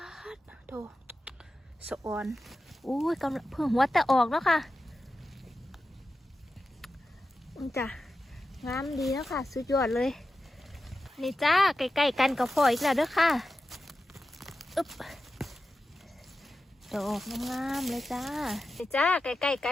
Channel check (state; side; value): normal; both; correlation 0.92